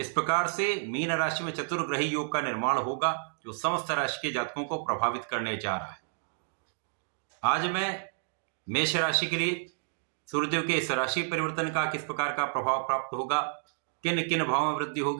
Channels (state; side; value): silent; left; digital silence